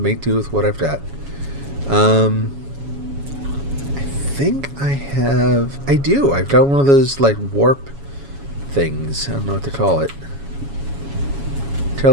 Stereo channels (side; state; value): left; late; 7.2 ms